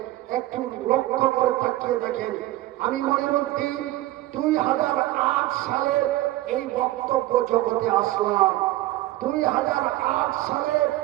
একটু লক্ষ্য করে তাকিয়ে দেখেন। আমি মঈনুদ্দিন 2008 সালে এই বক্তব্য জগতে আসলাম। 2008 সালে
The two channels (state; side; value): quieter; left; 16.4 dB